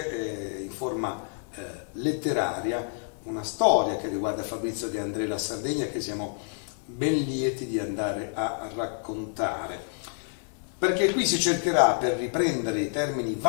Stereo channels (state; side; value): silent; right; 59 dB below the other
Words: in forma letteraria una storia che riguarda Fabrizio De André e la Sardegna, che siamo ben lieti di andare a raccontare, perché qui si cercherà, per riprendere i termini